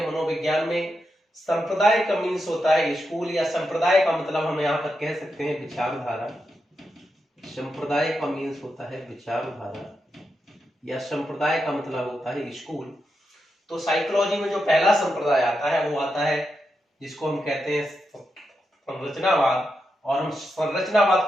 मनोविज्ञान में संप्रदाय का मीन्स होता है स्कूल, या संप्रदाय का मतलब हम यहाँ पर कह सकते हैं विचारधारा। संप्रदाय का मीन्स होता है विचारधारा, या संप्रदाय का मतलब होता है स्कूल। तो साइकोलॉजी में जो पहला संप्रदाय आता है वो आता है जिसको हम कहते हैं संरचनावाद, और हम संरचनावाद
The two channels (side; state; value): both; normal; correlation 0.86